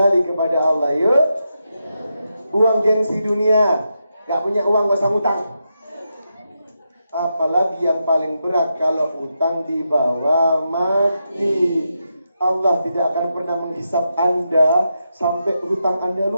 kepada Allah, yuk. Buang gengsi dunia. Gak punya uang gak usah ngutang. Apalagi yang paling berat kalau utang dibawa mati. Allah tidak akan pernah menghisap Anda sampai hutang Anda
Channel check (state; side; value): inverted; both; correlation -0.86